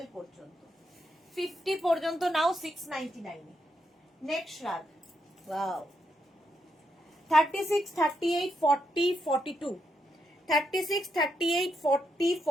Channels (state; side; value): normal; both; correlation 0.80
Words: পর্যন্ত, 50 পর্যন্ত নাও 699। নেক্সট রাগ, ওয়াও, 36, 38, 40, 42, 36, 38, 40,